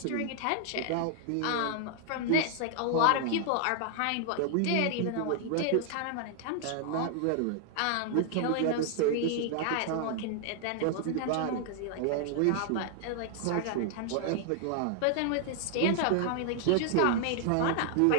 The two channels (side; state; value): both; different; correlation 0.00